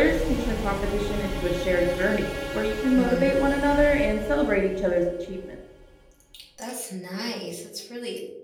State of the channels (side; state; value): both; identical; correlation 1.00